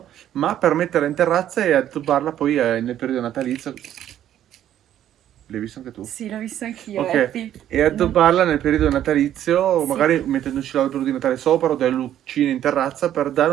ma per metterla in terrazza e addobbarla poi nel periodo natalizio. L'hai visto anche tu? Sì, l'ho visto anch'io, Ok, Eppi. e addobbarla nel periodo natalizio, Sì. magari mettendoci l'albero di Natale sopra o delle lucine in terrazza per dare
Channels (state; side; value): quieter; left; 11.3 dB